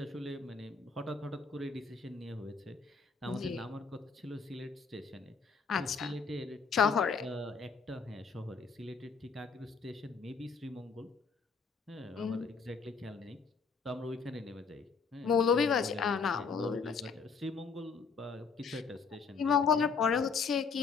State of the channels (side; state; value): right; quieter; 5.3 dB